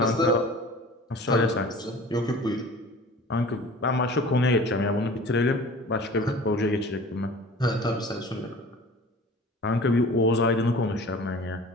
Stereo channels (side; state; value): both; normal; correlation 0.43